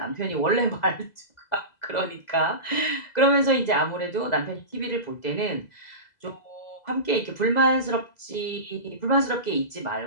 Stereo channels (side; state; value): right; late; 2.0 ms